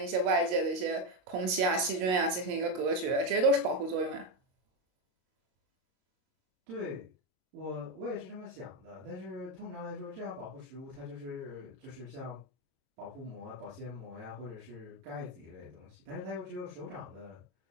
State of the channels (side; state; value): left; late; 22 ms